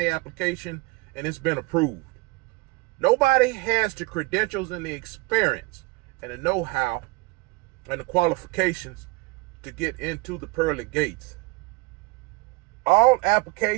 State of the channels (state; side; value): quieter; left; 24.0 dB